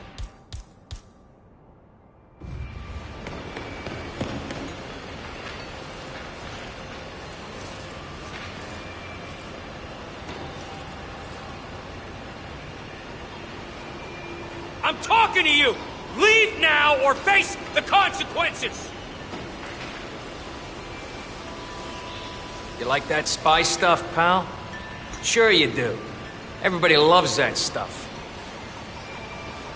I'm talking to you! Leave now or face the consequences! You like that spy stuff, pal? Sure you do. Everybody loves that stuff.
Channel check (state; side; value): identical; both; correlation 1.00